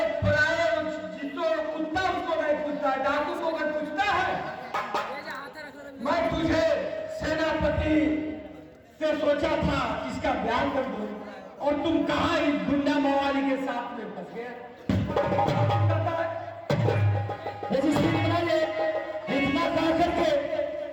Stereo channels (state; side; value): identical; both; correlation 1.00